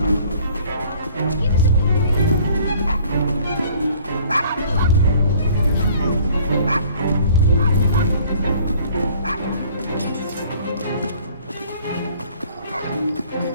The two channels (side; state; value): both; inverted; correlation -0.54